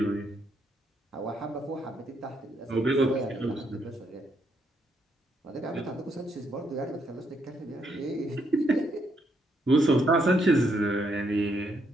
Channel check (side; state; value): both; normal; correlation 0.75